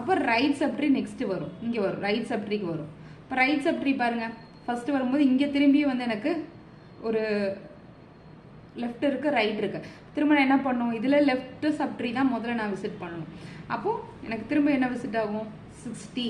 ரைட் சப்ட்ரி நெக்ஸ்ட் வரும், இங்கே வரும், ரைட் சப்ட்ரிக்கு வரும். இப்போ ரைட் சப்ட்ரி பாருங்க, ஃபர்ஸ்ட் வரும்போது இங்கே திரும்பி வந்து எனக்கு ஒரு லெஃப்ட் இருக்கு, ரைட் இருக்கு. திரும்ப நான் என்ன பண்ணும், இதில் லெஃப்ட் சப்ட்ரி தான் முதல்ல நான் விசிட் பண்ணணும். அப்போ எனக்கு திரும்ப என்ன விசிட் ஆகும், 60.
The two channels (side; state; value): both; identical; correlation 1.00